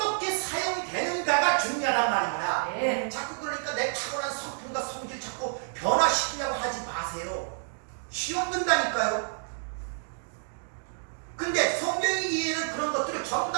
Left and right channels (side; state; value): left; silent; digital silence